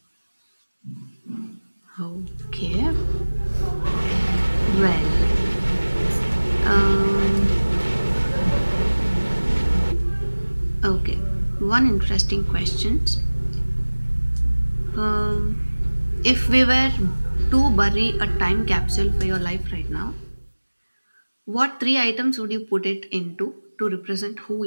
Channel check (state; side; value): inverted; both; correlation -1.00